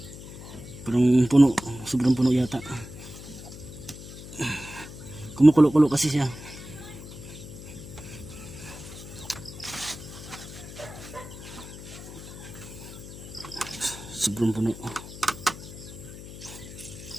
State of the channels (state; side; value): noise; left; hum, 13 dB below the sound